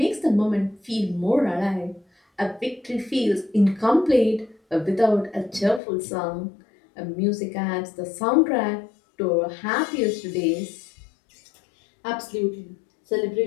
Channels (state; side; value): drops out; right; at 5.8 s